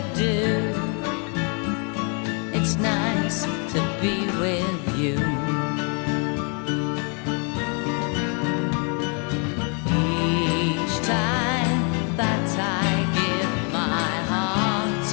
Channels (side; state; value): right; quieter; 37.6 dB